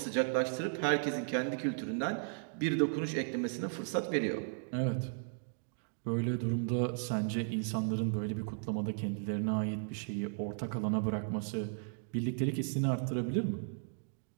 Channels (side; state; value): left; silent; digital silence